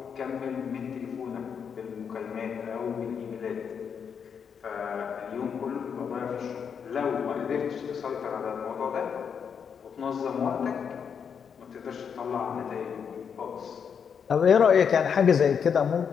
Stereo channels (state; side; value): quieter; right; 7.0 dB